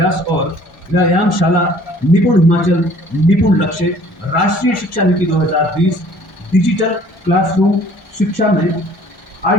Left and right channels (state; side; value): normal; both; correlation 0.54